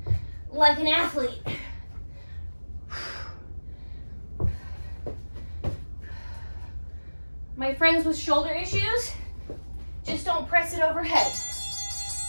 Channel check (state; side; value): inverted; both; correlation -1.00